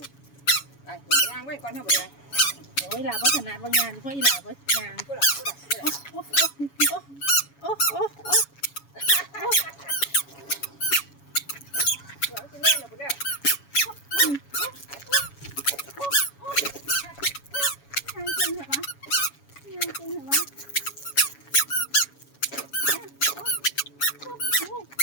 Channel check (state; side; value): late; right; 7.1 ms